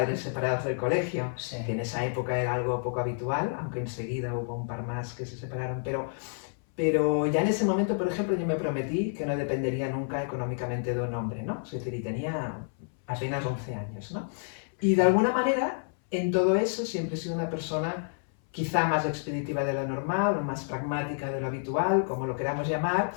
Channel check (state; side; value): silent; right; 58 dB below the other